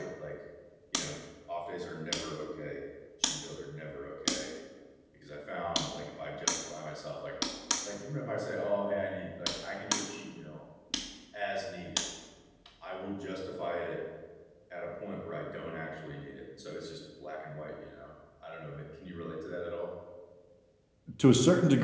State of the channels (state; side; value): identical; both; correlation 1.00